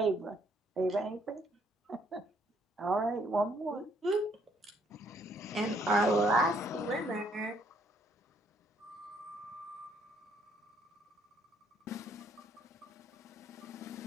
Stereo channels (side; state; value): both; normal; correlation 0.68